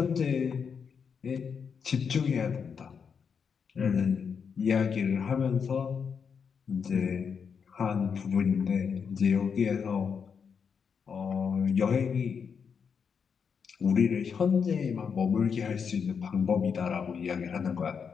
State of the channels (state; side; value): quieter; right; 6.4 dB